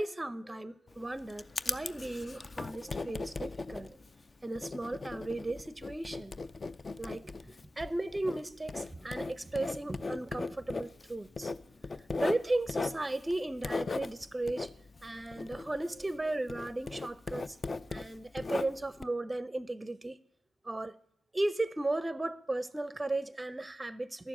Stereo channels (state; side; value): normal; both; correlation 0.95